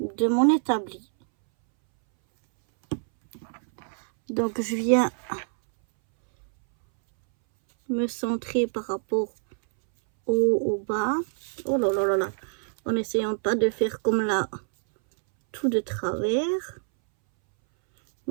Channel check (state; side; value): silent; left; 61 dB below the other